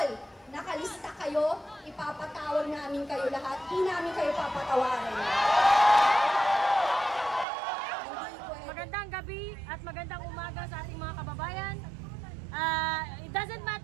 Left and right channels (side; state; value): left; drops out; at 7.5 s